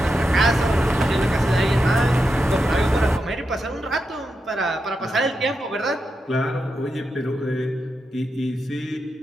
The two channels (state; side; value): normal; both; correlation 0.87